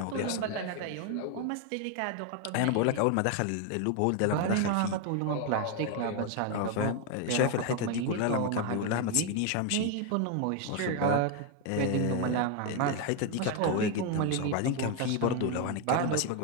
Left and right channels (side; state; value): both; different; correlation 0.01